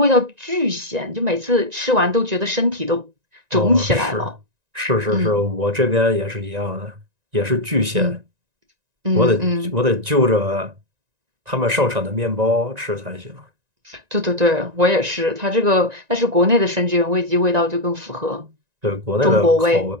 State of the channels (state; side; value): late; left; 1.9 ms